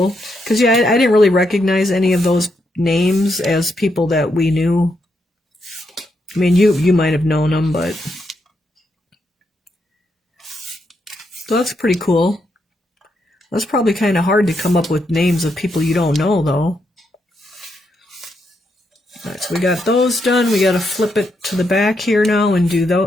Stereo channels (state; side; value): normal; both; correlation 0.80